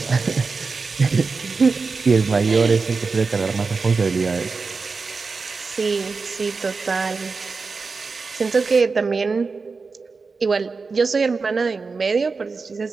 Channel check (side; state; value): left; quieter; 4.5 dB